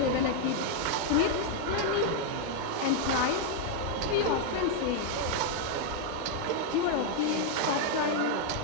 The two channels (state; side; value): different; both; correlation 0.00